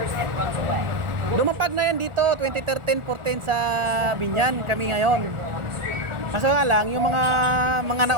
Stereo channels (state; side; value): late; left; 1.4 ms